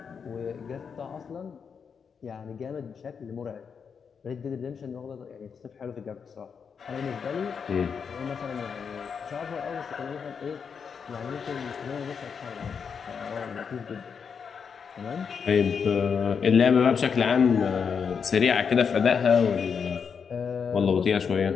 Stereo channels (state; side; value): quieter; right; 6.4 dB